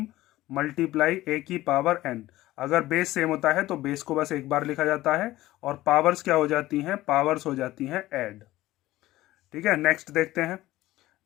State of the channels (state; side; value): quieter; right; 16.5 dB